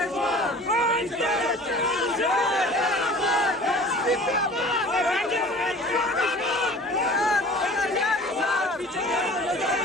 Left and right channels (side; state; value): both; normal; correlation 0.44